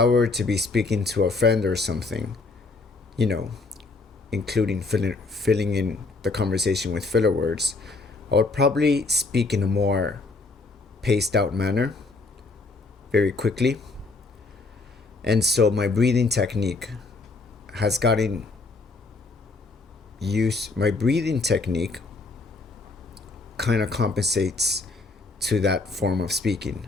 were to be speaking to a friend or something, you know, including filling in the conversation with filler words, I would probably speak in a more paced out manner very quickly. And so my breathing technique has gotten used. My breathing technique kind of compensates to that form of speaking.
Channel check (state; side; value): quieter; right; 3.6 dB